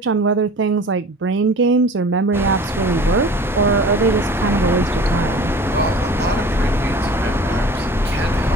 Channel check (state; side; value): normal; both; correlation 0.43